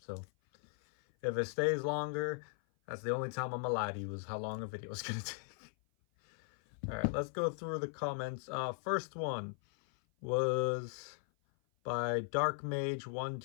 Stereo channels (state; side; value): silent; right; 52 dB below the other